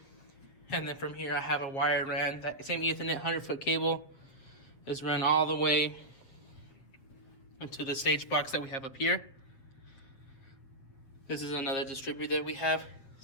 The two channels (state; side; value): late; right; 7.8 ms